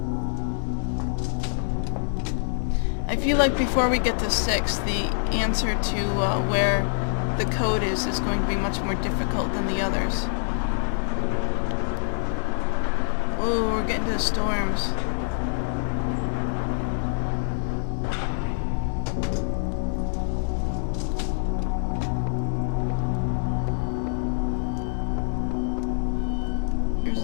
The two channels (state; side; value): silent; right; digital silence